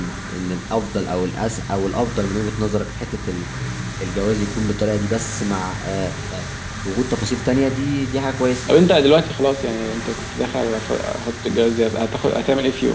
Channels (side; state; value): both; identical; correlation 1.00